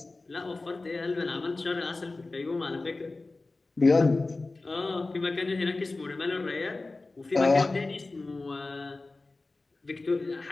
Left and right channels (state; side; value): quieter; right; 3.3 dB